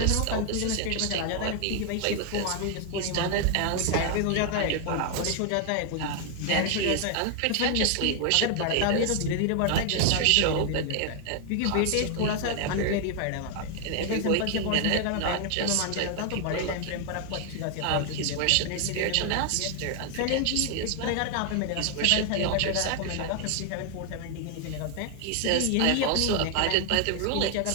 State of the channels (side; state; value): both; different; correlation 0.00